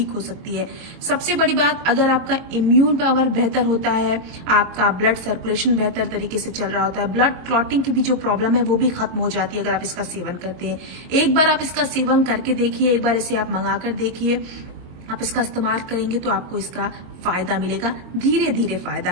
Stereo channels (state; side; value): late; left; 22 ms